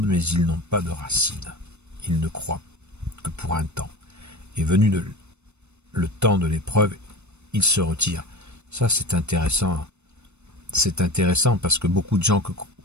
mais ils n'ont pas de racines. Ils ne croient que pour un temps. Et venu le temps de l'épreuve, ils se retirent. Ça, c'est intéressant. C'est intéressant parce que beaucoup de gens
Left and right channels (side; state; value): left; late; 0.81 ms